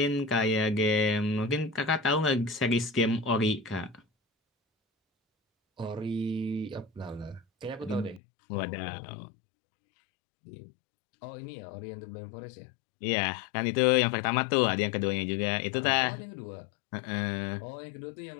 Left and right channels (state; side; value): drops out; right; at 8.2 s